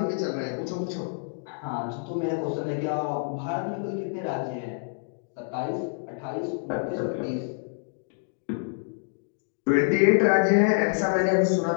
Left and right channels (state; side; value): silent; right; 55 dB below the other